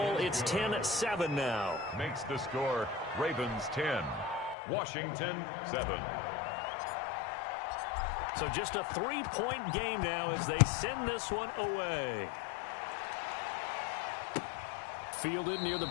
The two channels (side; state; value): right; drops out; at 4.5 s